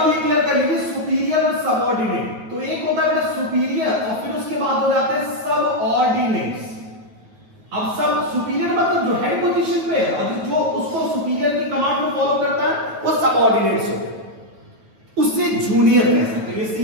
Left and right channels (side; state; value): left; late; 9.2 ms